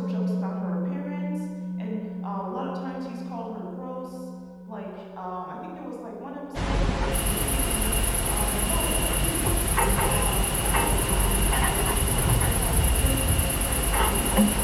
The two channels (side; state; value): both; identical; correlation 1.00